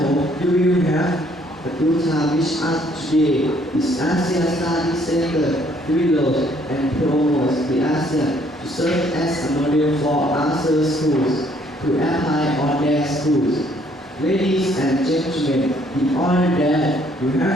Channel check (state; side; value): normal; both; correlation 0.64